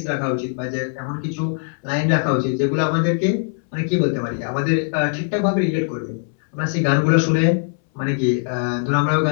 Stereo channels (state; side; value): silent; right; 65 dB below the other